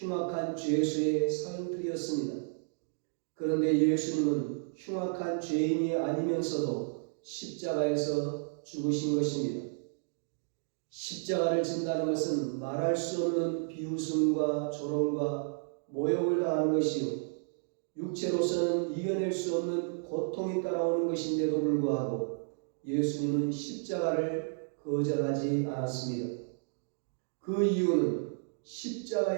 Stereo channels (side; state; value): left; silent; digital silence